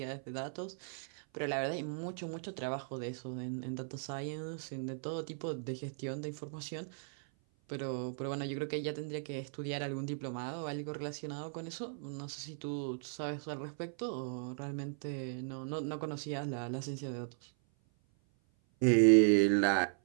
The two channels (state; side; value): silent; left; 53 dB below the other